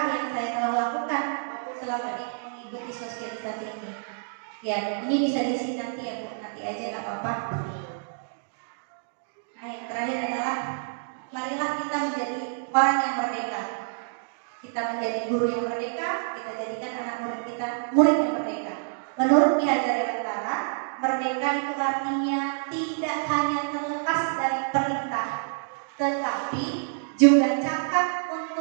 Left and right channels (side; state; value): left; silent; digital silence